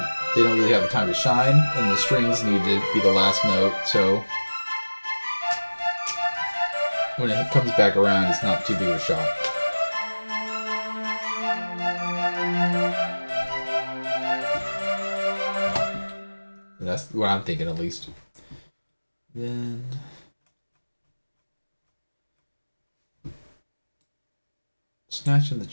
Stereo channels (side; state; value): both; inverted; correlation -1.00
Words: they don't really have a time to shine, and the strings need to be the last note, so when it comes back around, it's not too big of a shock. That's what I'm thinking, at least. Then snatching the